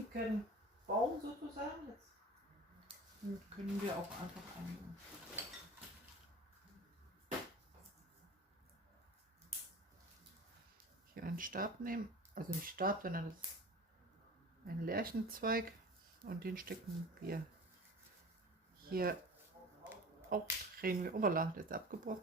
Baum sozusagen. Jetzt können wir auch einfach hier einen Stab nehmen. Also nicht Stab, sondern das ist ein Lärchenzweig. Und den stecken wir hier auch, drehen wir, Oberla, der ist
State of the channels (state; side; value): normal; both; correlation 0.38